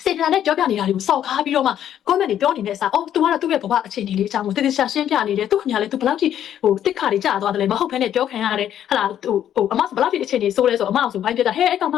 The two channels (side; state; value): right; quieter; 10.5 dB